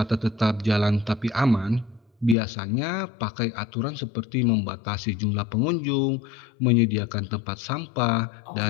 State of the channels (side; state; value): right; drops out; at 2.4 s